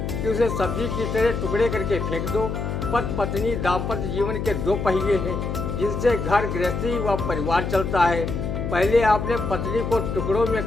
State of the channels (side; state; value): left; noise; hum, 3 dB below the sound